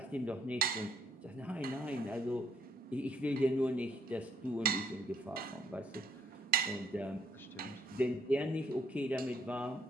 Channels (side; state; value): both; normal; correlation 0.70